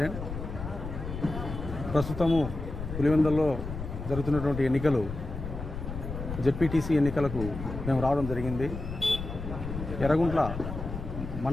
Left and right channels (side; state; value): left; noise; rumble, 7 dB below the sound